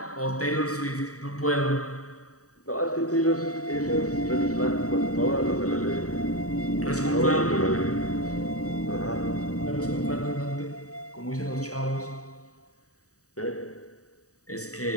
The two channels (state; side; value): late; right; 0.66 ms